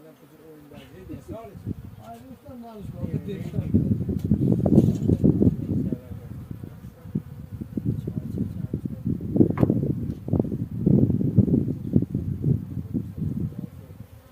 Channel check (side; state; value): both; identical; correlation 1.00